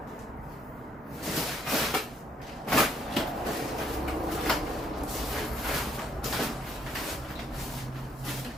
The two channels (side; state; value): both; normal; correlation 0.69